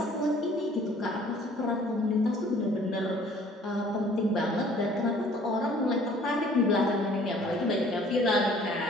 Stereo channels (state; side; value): normal; both; correlation 0.55